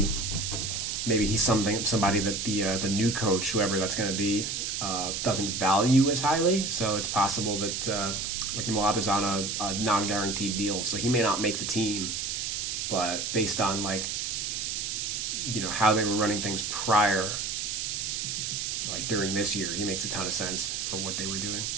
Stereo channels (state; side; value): noise; right; hiss, 2 dB below the sound